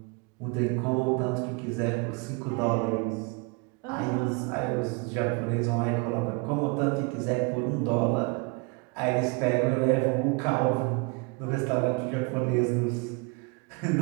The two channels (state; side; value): quieter; left; 30.6 dB